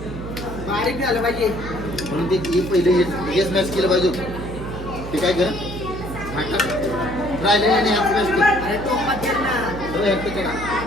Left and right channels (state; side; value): noise; right; hum, 9 dB below the sound